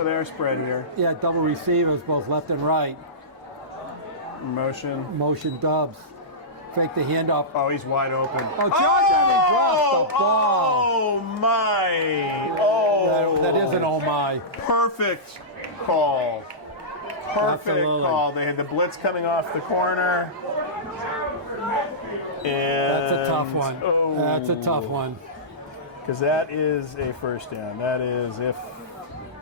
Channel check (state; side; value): normal; both; correlation -0.17